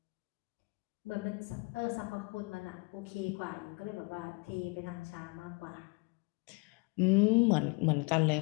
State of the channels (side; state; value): right; quieter; 29.6 dB